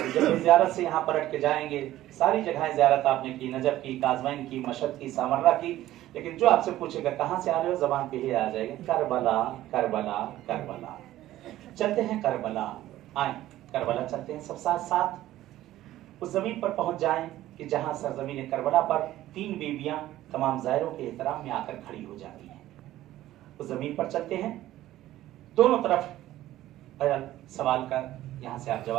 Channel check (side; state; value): left; quieter; 14.5 dB